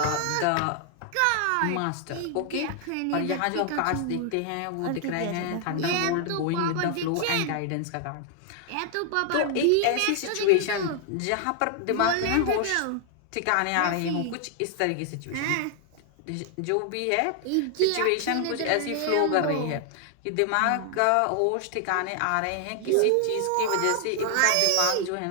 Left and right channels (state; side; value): different; both; correlation 0.00